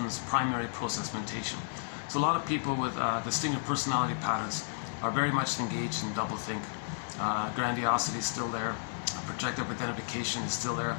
this primary process mentation. So a lot of people with distinctive personality patterns are very much engaged in doublethink. Grandiosity is still there. Projective identification is still there.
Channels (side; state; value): right; silent; 56 dB below the other